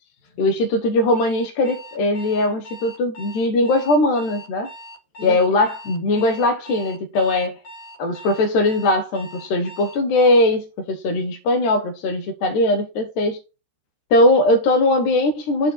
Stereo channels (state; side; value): late; right; 13 ms